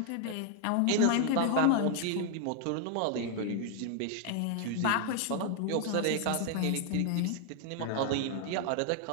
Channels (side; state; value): both; different; correlation 0.00